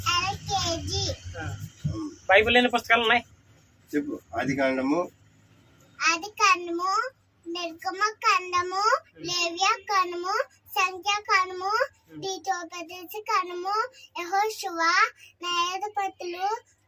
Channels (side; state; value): both; identical; correlation 1.00